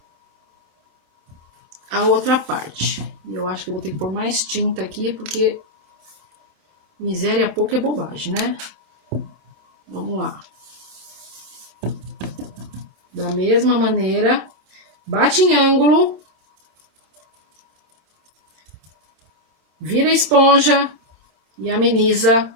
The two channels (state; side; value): late; left; 27 ms